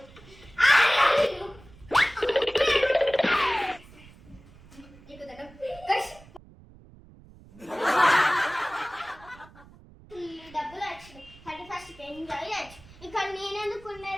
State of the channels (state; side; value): noise; right; rumble, 23 dB below the sound